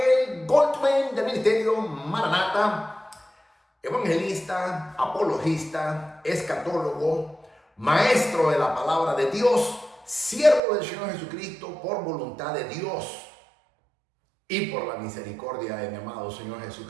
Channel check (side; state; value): left; drops out; at 10.6 s